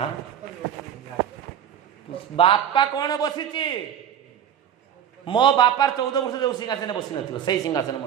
बापा कौन बसी मो बापार 14 वर्ष जो सिंहासन बसी न से सिंहासन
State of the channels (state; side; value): quieter; left; 9.3 dB